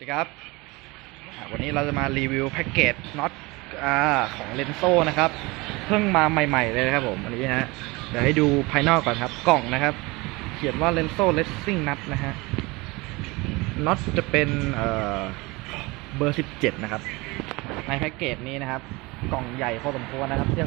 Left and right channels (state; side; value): quieter; left; 24.0 dB